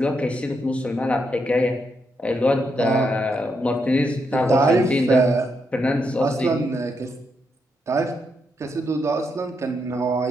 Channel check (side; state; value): both; normal; correlation 0.80